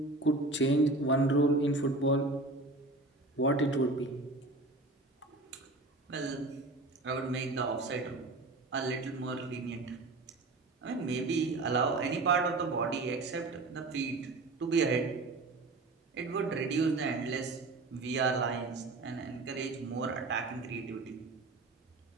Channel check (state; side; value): quieter; left; 3.1 dB